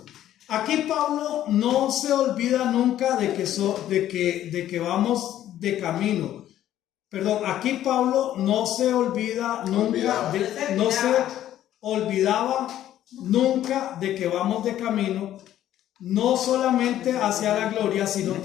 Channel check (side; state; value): right; quieter; 12.2 dB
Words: Aquí Pablo no se olvida nunca de que vamos de camino. Perdón, aquí Pablo no se olvida nunca, no se olvidaba nunca de que vamos de camino, no solamente hacia la gloria, sino